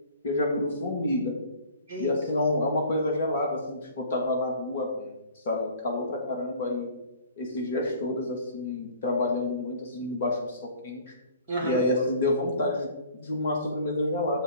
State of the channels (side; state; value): both; inverted; correlation -0.48